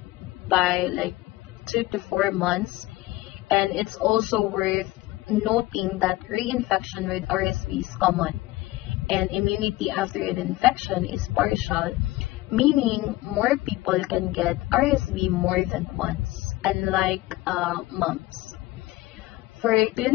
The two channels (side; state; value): right; quieter; 18.5 dB